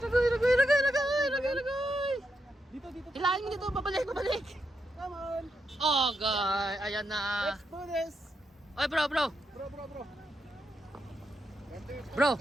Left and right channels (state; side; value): normal; both; correlation 0.82